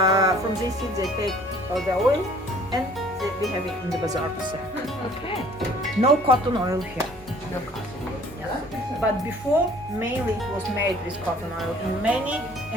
from these seeds they take the oil, and we have it in the bazaar to sell. Okay. No cotton oil here. No cotton. But before, mainly it was made with cotton oil. In many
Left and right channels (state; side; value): normal; both; correlation 0.54